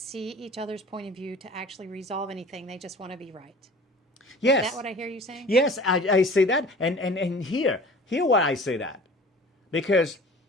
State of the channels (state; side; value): normal; both; correlation 0.44